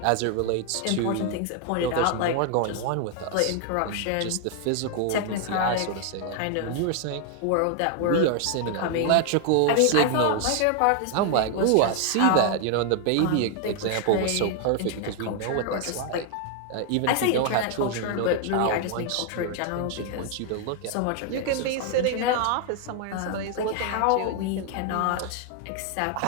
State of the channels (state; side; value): different; both; correlation 0.00